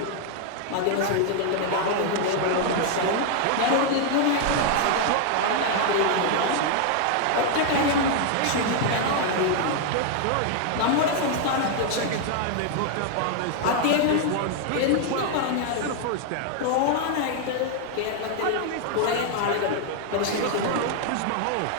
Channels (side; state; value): both; different; correlation 0.00